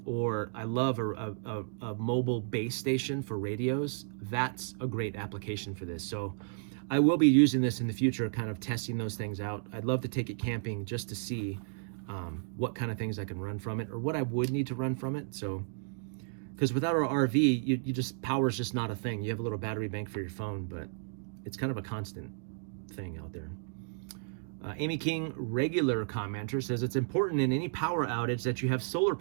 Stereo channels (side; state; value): left; silent; digital silence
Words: or I love a mobile base station for radios. That's a great application for this. So I will be using this in the future, kind of testing those things out. I'd love to take it camping just to see what kind of things I can run from it, or what I would need to run from it. So, because without our RV, you just, power's just not a thing. You have a little battery bank for your phone, but it's kind of a constant thing out there. Amy King, regular commenter, says it's important in any power outage that you have solar